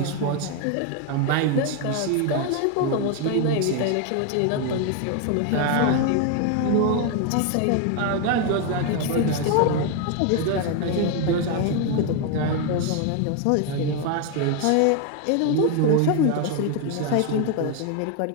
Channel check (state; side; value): different; both; correlation 0.01